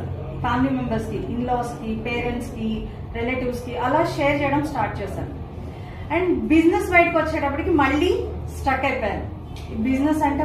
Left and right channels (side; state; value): both; identical; correlation 1.00